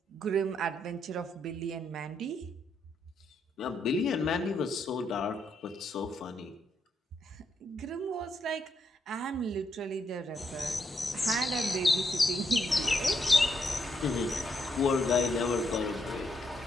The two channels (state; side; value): normal; both; correlation 0.78